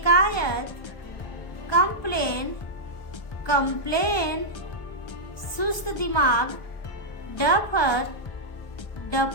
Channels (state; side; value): late; right; 1.2 ms